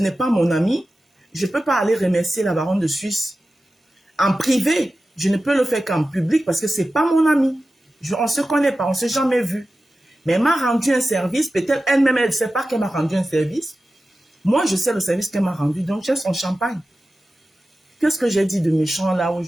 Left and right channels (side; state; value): both; normal; correlation 0.94